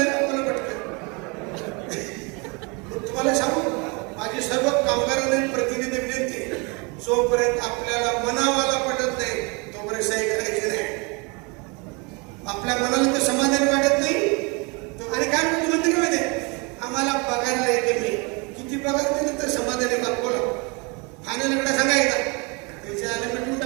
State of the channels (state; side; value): quieter; left; 30.1 dB